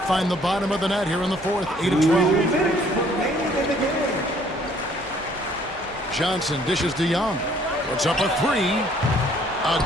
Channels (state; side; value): normal; both; correlation 0.60